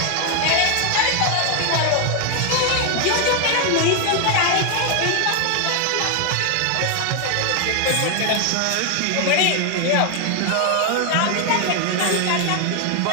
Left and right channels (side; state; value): both; different; correlation 0.01